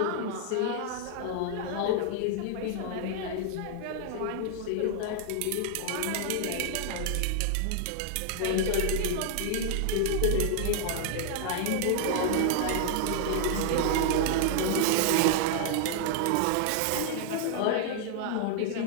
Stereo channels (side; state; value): both; different; correlation 0.00